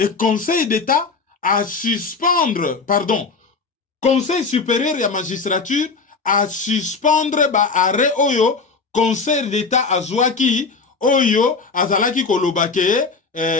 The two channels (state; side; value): quieter; right; 4.5 dB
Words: conseil d'état a suspendre, pardon, conseil supérieur ya magistrature à suspendre ba arrêt oyo conseil d'état azwaki oyo azalaki kolobake